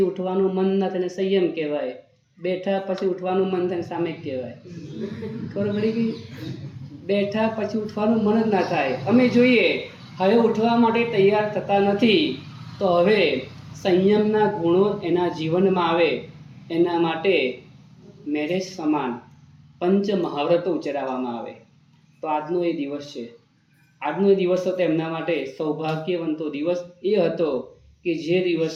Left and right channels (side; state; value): both; identical; correlation 1.00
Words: ઉઠવાનું મન ન થાય સંયમ કહેવાય. બેઠા પછી ઉઠવાનું મન થાય સામે કહેવાય. ખબર પડી ગઈ? બેઠા પછી ઉઠવાનું મન જ ના થાય. અમે જોઈએ હવે ઉઠવા માટે તૈયાર થતા નથી, તો હવે સંયમના ગુણો એના જીવનમાં આવે એના માટે મેરેજ સમાન પંચ મહાવ્રતો ઉચ્ચારવામાં આવે. તો આજનો એ દિવસ છે. આજનો એ દિવસ હતો એમના માટે સૌભાગ્યવંતો દિવસ એ હતો કે જે